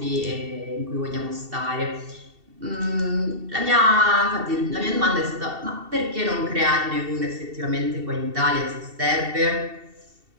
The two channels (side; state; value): left; late; 2.7 ms